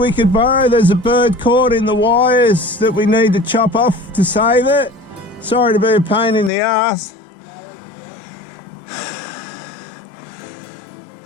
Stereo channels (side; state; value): right; drops out; at 6.5 s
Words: could borrow? There's a bird caught in the wires that we need to chop off to save it. Sorry to be a pain in the ass.